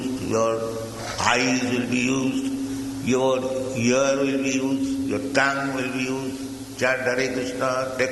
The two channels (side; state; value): both; identical; correlation 1.00